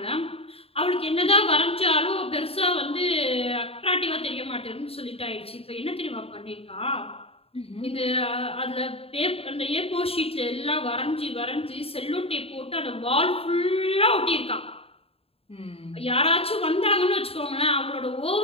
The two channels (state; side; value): late; right; 0.28 ms